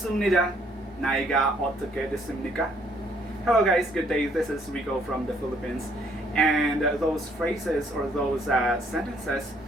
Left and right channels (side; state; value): both; normal; correlation 0.66